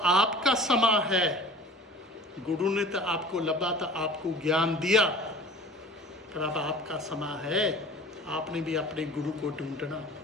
आपका समय है, गुरु ने तो आपको लभा था, आपको ज्ञान दिया, पर अब आपका समय है, आपने भी अपने गुरु को ढूंढना,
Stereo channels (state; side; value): normal; both; correlation 0.42